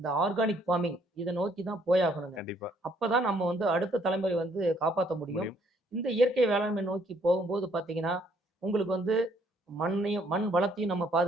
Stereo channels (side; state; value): both; normal; correlation 0.65